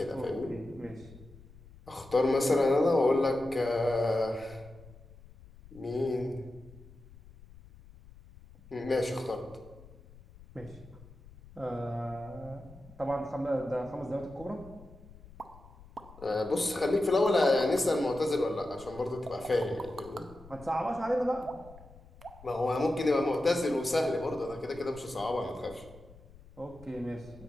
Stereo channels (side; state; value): left; noise; rumble, 21 dB below the sound